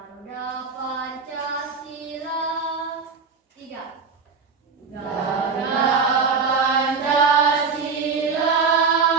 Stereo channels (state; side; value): quieter; left; 5.2 dB